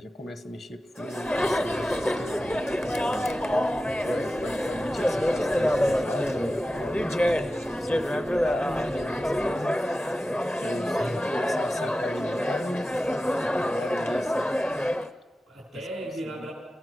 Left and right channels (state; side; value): normal; both; correlation 0.94